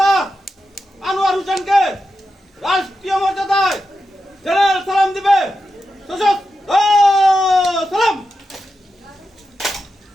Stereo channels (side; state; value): both; normal; correlation 0.89